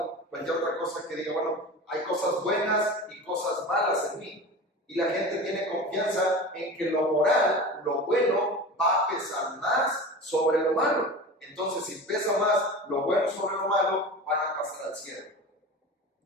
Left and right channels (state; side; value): normal; both; correlation 0.32